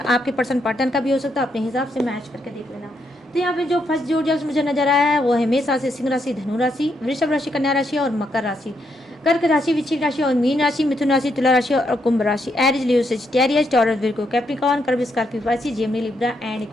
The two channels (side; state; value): both; normal; correlation 0.78